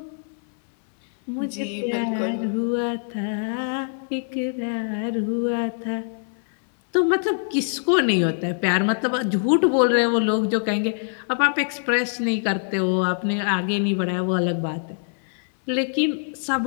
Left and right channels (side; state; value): right; silent; 63 dB below the other